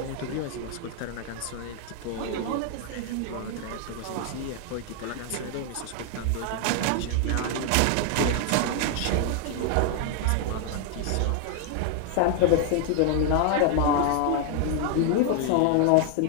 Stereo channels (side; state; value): both; different; correlation 0.00